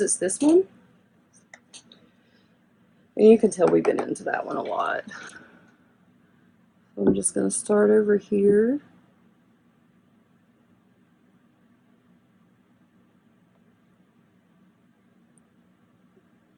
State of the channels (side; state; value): both; identical; correlation 1.00